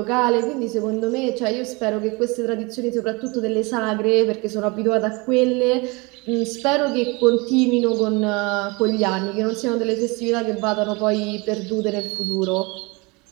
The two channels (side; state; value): left; quieter; 26.8 dB